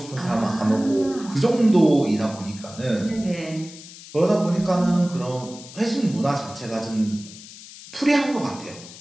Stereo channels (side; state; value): left; noise; hiss, 17 dB below the sound